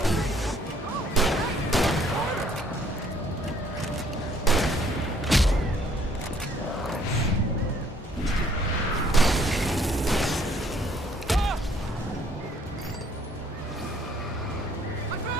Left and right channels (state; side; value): normal; both; correlation 0.62